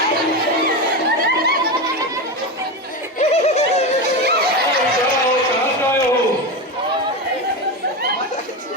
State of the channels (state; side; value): normal; both; correlation 0.17